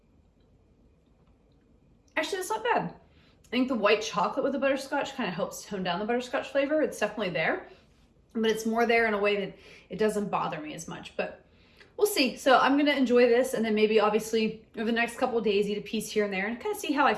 Actually, that's not bad. I think the white chocolate with the butterscotch kind of helps tone down the butterscotch flavor. It's definitely there, but it's more there in a way that it doesn't bother me as much, but we'll see. So I'm gonna enjoy this, and then maybe obviously over the next couple of days eat a piece here and there and kind of see how I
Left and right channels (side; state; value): both; identical; correlation 1.00